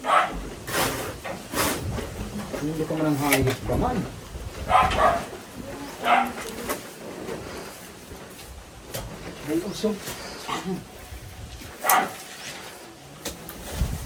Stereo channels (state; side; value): identical; both; correlation 1.00